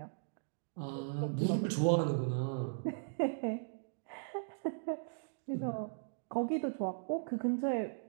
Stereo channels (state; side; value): silent; left; digital silence